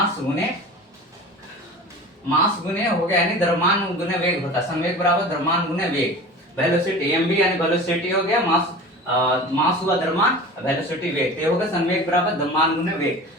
गुणे हो गया, यानी द्रव्यमान गुणे वेग होता है। संवेग बराबर द्रव्यमान गुणे वेग। वेलोसिटी एम यानी वेलोसिटी हो गया, मास हुआ द्रव्यमान, वेलोसिटी वेग, ये होगा संवेग बराबर द्रव्यमान गुणे वेग।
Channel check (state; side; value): normal; both; correlation 0.36